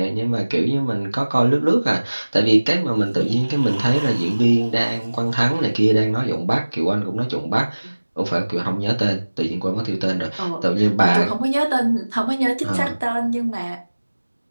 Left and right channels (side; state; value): both; inverted; correlation -1.00